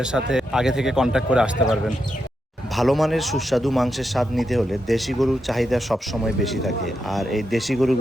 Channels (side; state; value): both; normal; correlation 0.85